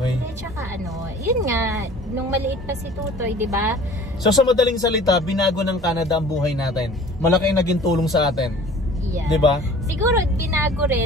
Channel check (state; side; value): normal; both; correlation 0.47